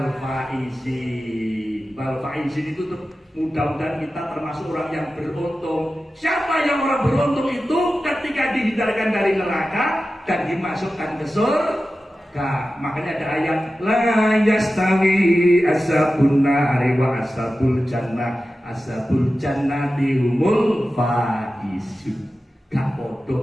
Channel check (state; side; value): normal; both; correlation 0.94